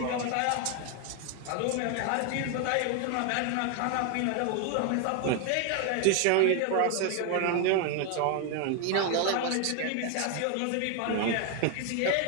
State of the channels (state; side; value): different; both; correlation 0.01